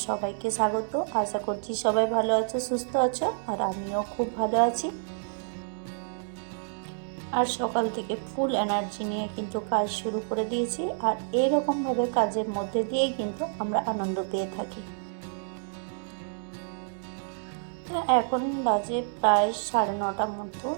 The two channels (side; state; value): left; silent; digital silence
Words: সবাইকে স্বাগত। আশা করছি সবাই ভালো আছো, সুস্থ আছো, আর আমিও খুব ভালো আছি। আর সকাল থেকে ফুল এনার্জি নিয়ে কিন্তু কাজ শুরু করে দিয়েছি, আর এরকমভাবে কাজের মধ্যে দিয়েই কিন্তু আমরা আনন্দ পেয়ে থাকি। এখন বাজে প্রায় 9:30 মতো।